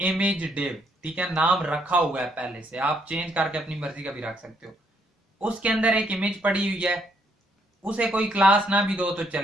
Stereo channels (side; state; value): both; normal; correlation 0.71